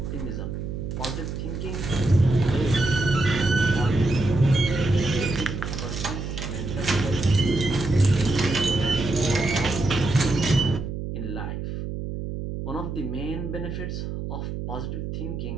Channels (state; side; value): noise; right; hum, 5 dB below the sound